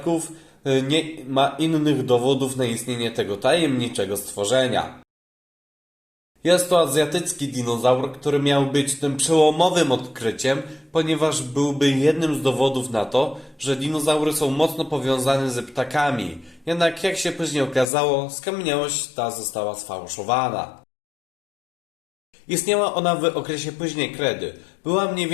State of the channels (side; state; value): right; drops out; at 17.9 s